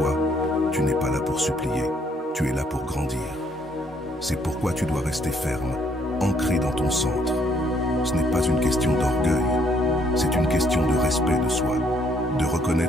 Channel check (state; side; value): normal; both; correlation 0.68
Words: Tu es là pour grandir. C'est pourquoi tu dois rester ferme, ancré dans ton centre. Ce n'est pas une question d'orgueil, c'est une question de respect de soi, de